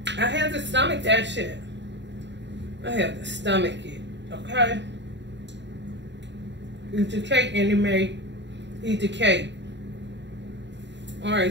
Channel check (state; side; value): late; left; 0.52 ms